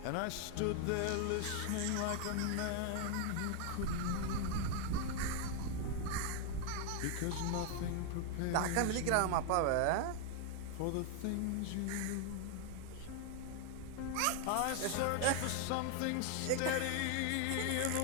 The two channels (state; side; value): different; both; correlation 0.00